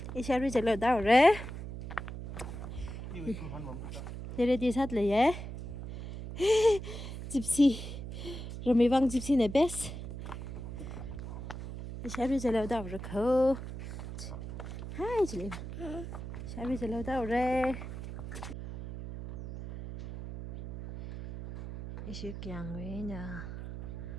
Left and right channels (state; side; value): noise; right; hum, 8 dB below the sound